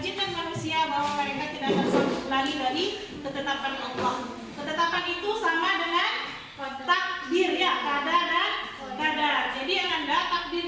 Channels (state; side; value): identical; both; correlation 1.00